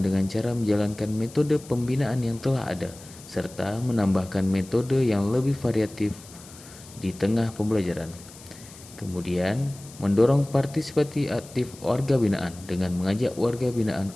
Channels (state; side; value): noise; left; hiss, 19 dB below the sound